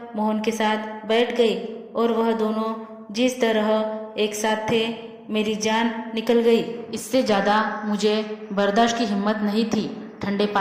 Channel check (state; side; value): identical; both; correlation 1.00